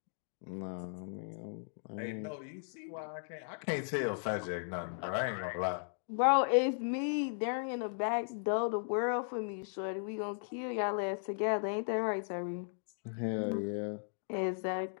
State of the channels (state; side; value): silent; right; digital silence